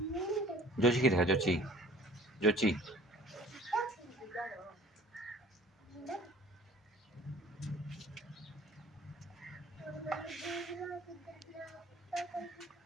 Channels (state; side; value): normal; both; correlation 0.50